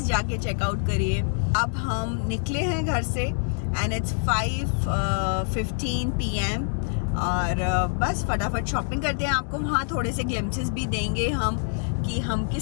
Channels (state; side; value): silent; right; digital silence